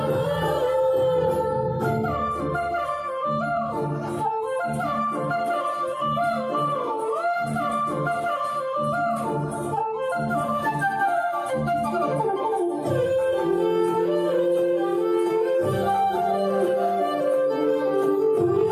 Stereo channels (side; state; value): both; identical; correlation 1.00